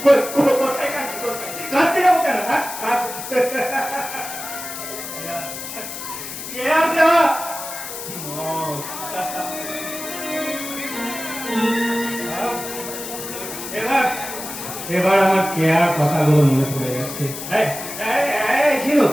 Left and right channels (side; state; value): left; noise; hiss, 9 dB below the sound